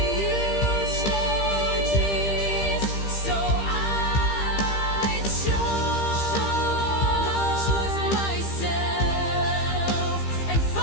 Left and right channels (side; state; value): right; late; 15 ms